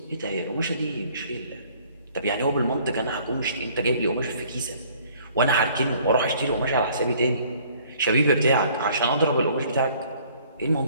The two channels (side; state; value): both; inverted; correlation -0.57